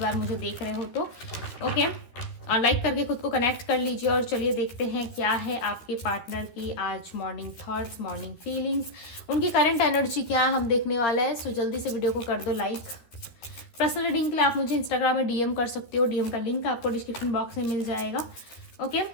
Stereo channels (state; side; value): late; right; 13 ms